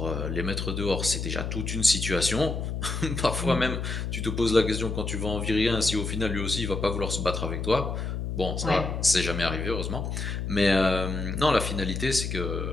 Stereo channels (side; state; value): left; noise; hum, 3 dB below the sound